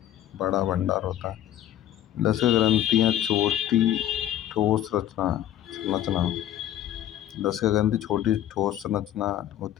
बड़ा भंडार होता है। लसिका ग्रंथियां छोटी ठोस संरचना लसिका ग्रंथि छोटी ठोस संरचना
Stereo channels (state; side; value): quieter; right; 11.9 dB